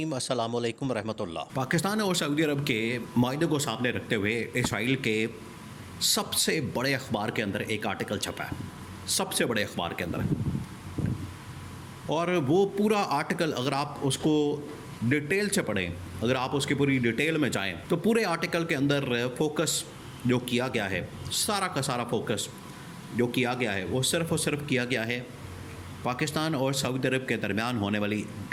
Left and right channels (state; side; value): identical; both; correlation 1.00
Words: السلام علیکم ورحمۃ اللہ۔ پاکستان اور سعودی عرب کے معاہدے کو سامنے رکھتے ہوئے اسرائیل کے سب سے بڑے اخبار کے اندر ایک آرٹیکل چھپا ہے، سب سے بڑے اخبار کے اندر، اور وہ پورا آرٹیکل اگر آپ اس کو ڈیٹیل سے پڑھیں، اگر آپ اس کی پوری ڈیٹیل میں جائیں تو پورے آرٹیکل کے اندر فوکس جو کیا گیا ہے، سارا کا سارا فوکس جو کیا گیا ہے وہ صرف اور صرف کیا گیا ہے پاکستان اور سعودی عرب کے درمیان ہونے والی